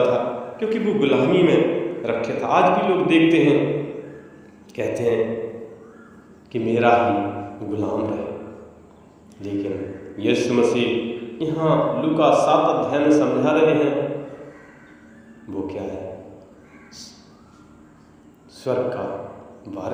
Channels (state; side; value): identical; both; correlation 1.00